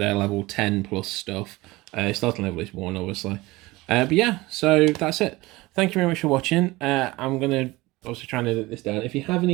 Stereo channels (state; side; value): quieter; left; 20.6 dB